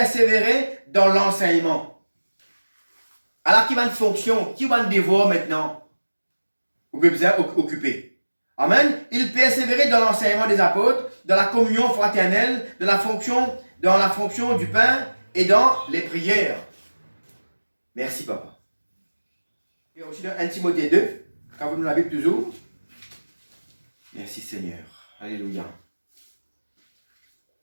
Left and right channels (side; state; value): both; inverted; correlation -1.00